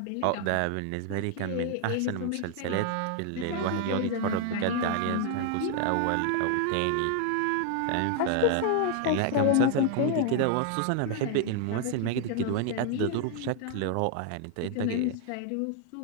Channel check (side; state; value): both; different; correlation 0.00